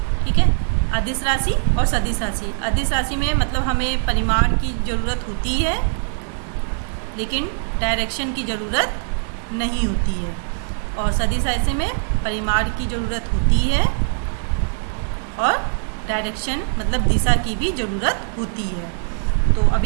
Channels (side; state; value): left; silent; digital silence